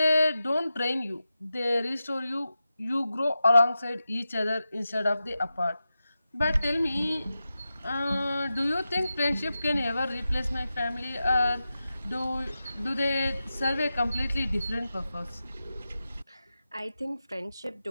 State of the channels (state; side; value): inverted; both; correlation -0.92